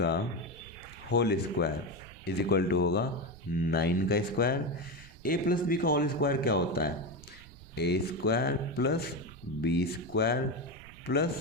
whole square is equal to होगा 9 का स्क्वायर। a + b का होल स्क्वायर क्या होता है, a² + b²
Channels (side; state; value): right; noise; rumble, 21 dB below the sound